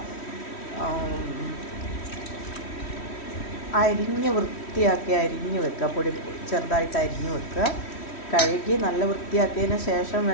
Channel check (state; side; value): late; right; 3.1 ms